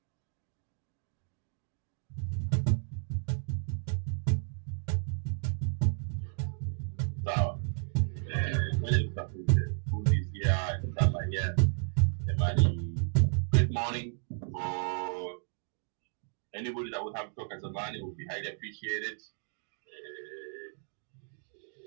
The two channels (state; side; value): silent; left; 56 dB below the other